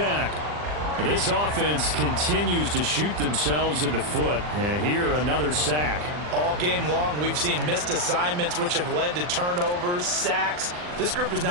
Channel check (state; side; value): late; left; 40 ms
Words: This offense continues to shoot themselves in the foot. And here, another sack. All game long, we've seen missed assignments, which have led to turnovers, sacks. This group has